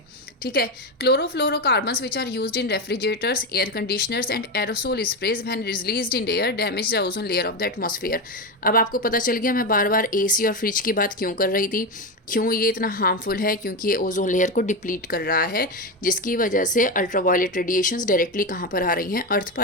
ठीक है। Chlorofluorocarbons which are used in refrigerators, air conditioners and aerosol sprays when released in air damage the ozone layer of the atmosphere. अब आपको पता चल गया मैं बार बार एसी और फ्रिज की बात क्यों कर रही थी, क्यों ये इतना हार्मफुल है, क्योंकि ये ओजोन लेयर को डिप्लीट कर रहा है, जिसकी वजह से अल्ट्रावायलेट रेडिएशंस डायरेक्टली कहाँ पर आ रही हैं, अर्थ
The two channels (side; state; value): both; normal; correlation 0.14